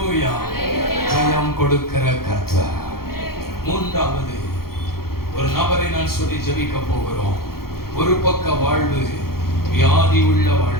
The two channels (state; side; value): late; right; 0.94 ms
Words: ஜெயம் கொடுக்கிற கர்த்தர். மூன்றாவது ஒரு நபரை நான் சொல்லி ஜெபிக்க போகிறோம். ஒரு பக்க வாழ்வு வியாதி உள்ள